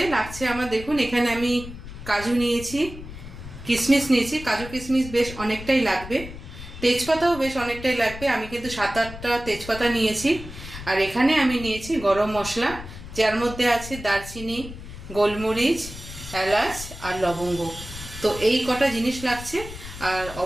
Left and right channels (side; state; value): left; noise; rumble, 13 dB below the sound